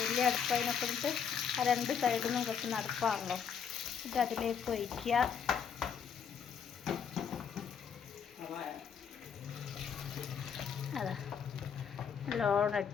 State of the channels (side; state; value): right; quieter; 7.3 dB